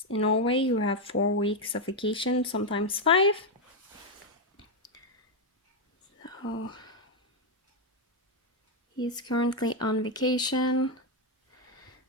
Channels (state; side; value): normal; both; correlation 0.03